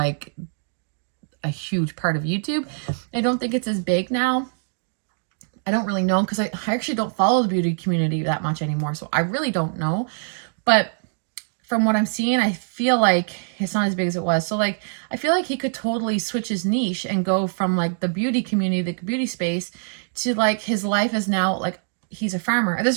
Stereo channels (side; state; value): left; silent; digital silence